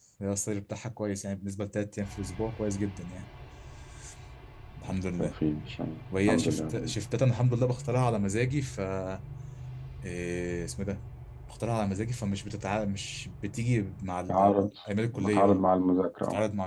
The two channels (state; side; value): identical; both; correlation 1.00